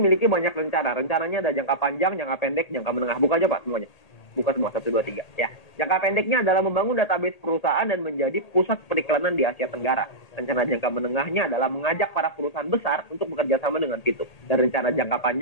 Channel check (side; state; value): right; late; 1.8 ms